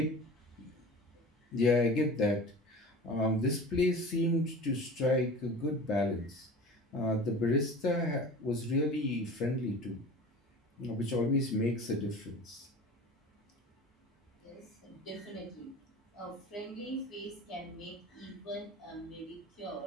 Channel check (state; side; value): normal; both; correlation 0.37